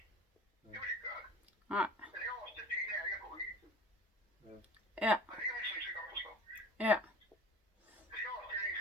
Nej. Ja. Ja.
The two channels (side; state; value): both; normal; correlation 0.39